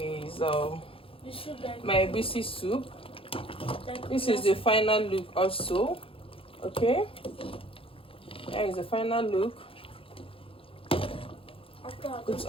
my egusi soup. This is the final look also. Okay, here is the final look. It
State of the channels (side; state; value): right; late; 0.27 ms